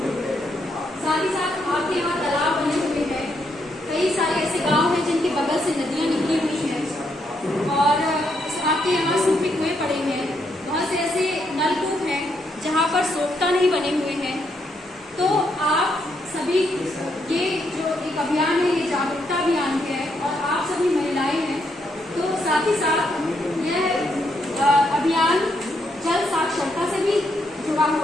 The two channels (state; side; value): normal; both; correlation 0.77